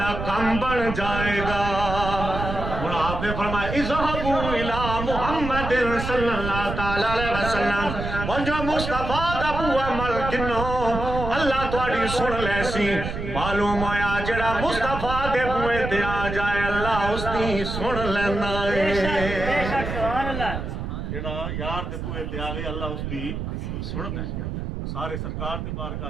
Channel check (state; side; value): noise; right; rumble, 5 dB below the sound